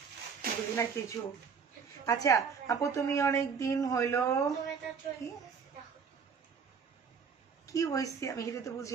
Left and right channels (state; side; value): quieter; left; 6.1 dB